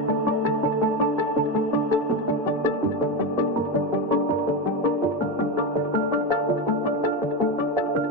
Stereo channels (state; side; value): normal; both; correlation 0.14